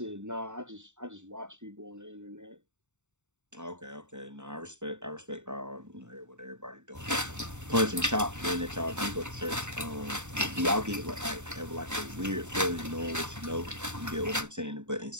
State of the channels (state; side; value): late; left; 0.84 ms